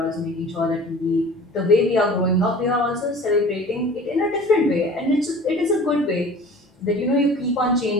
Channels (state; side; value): normal; both; correlation 0.43